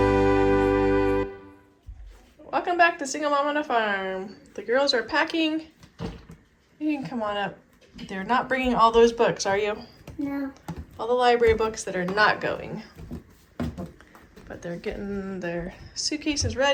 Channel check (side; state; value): both; identical; correlation 1.00